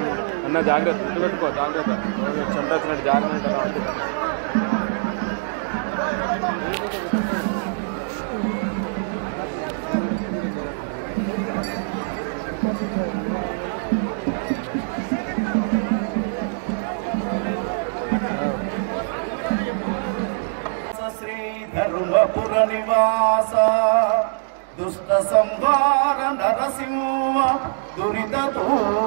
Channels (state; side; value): silent; left; 63 dB below the other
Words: అన్న, జాగ్రత్త పెట్టుకో, జాగ్రత్త చెంట వచ్చినట్టు జారినట్టు అలా ఉంటుంది. శ్రీ ధర్మపుర నివాస దుష్ట సంహార నరసింహ దురిత